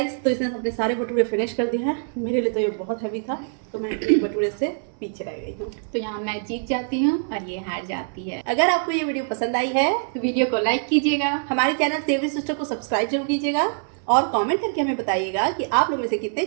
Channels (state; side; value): silent; left; 60 dB below the other